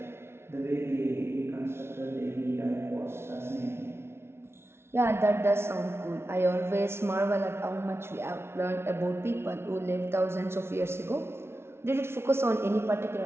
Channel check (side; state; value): left; late; 0.12 ms